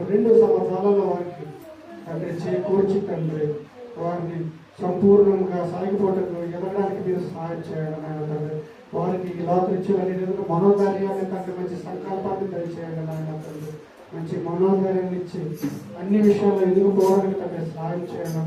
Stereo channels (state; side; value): identical; both; correlation 1.00